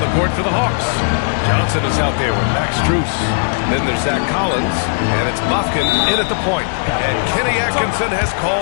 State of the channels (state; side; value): silent; right; digital silence